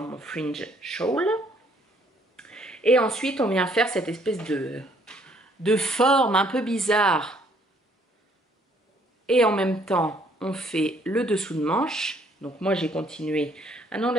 fringe shawl. Et ensuite on vient faire cette espèce de forme un peu bizarre. Et en même temps on fait le dessous de manche. Donc moi j'ai continué. Ah non,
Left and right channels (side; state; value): both; normal; correlation 0.64